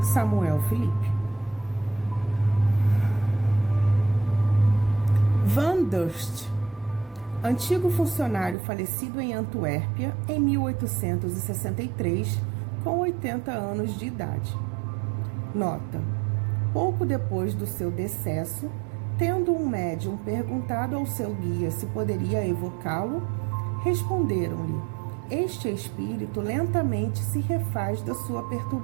Samuel Felipe. Van Durst, antigo funcionário falecido em Antuérpia em 1863, com 80 anos de idade. Nota: pouco depois do seu decesso, tendo um médium perguntado ao seu guia se poderia evocá-lo, responderam-lhe: este espírito lentamente se refaz da sua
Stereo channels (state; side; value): drops out; left; at 8.6 s